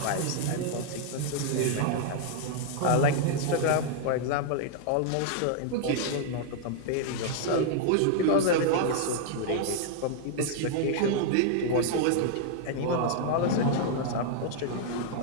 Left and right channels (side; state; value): both; different; correlation -0.01